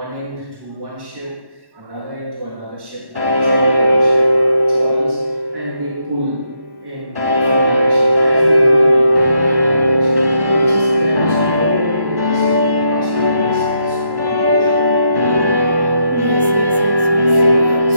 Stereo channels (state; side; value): late; left; 1.1 ms